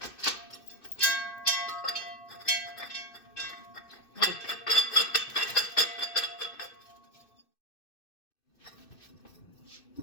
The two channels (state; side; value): late; right; 2.6 ms